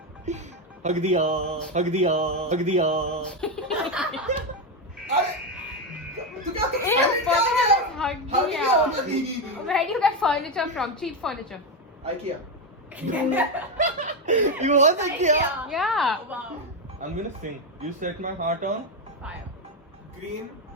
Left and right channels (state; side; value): normal; both; correlation 0.09